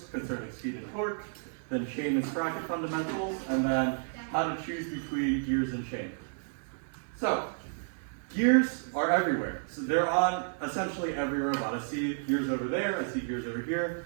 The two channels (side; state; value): left; silent; digital silence